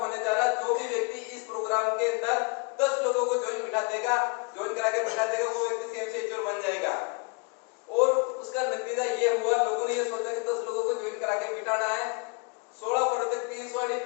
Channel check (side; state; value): right; quieter; 32.9 dB